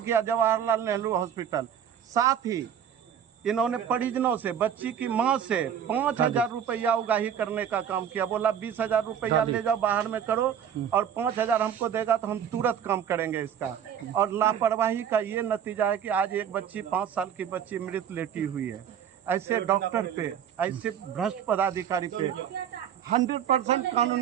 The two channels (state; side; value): quieter; left; 8.8 dB